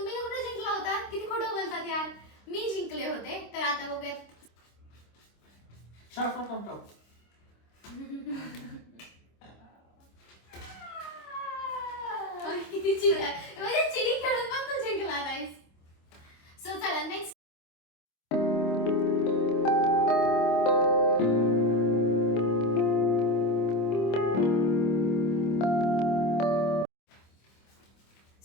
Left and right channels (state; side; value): late; right; 26 ms